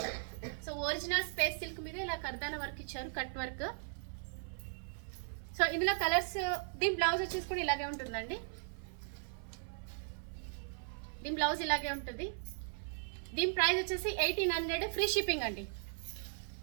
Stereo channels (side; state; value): left; silent; 53 dB below the other